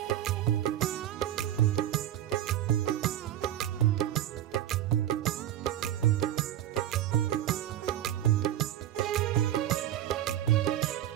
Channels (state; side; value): quieter; left; 12.1 dB